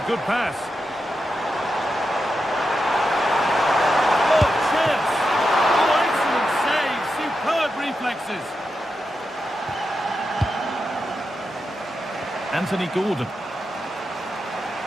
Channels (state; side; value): normal; both; correlation 0.88